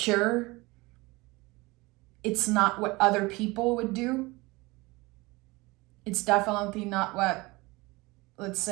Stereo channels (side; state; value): left; quieter; 23.0 dB